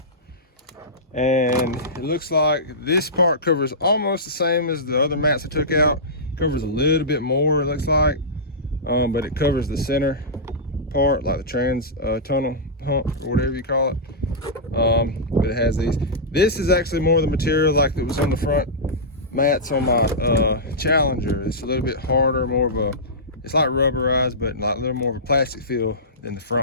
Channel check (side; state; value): both; normal; correlation -0.16